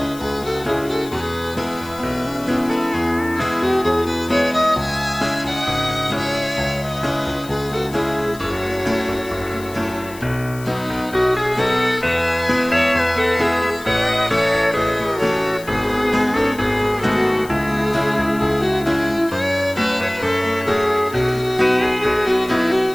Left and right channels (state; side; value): noise; left; hiss, 18 dB below the sound